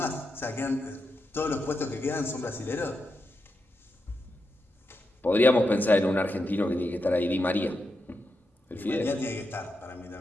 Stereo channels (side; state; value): both; normal; correlation 0.86